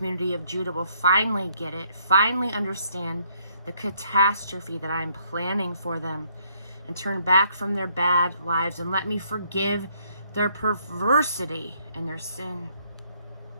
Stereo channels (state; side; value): inverted; both; correlation -0.69